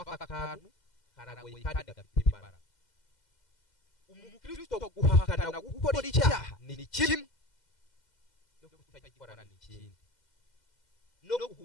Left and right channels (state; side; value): late; right; 2.0 ms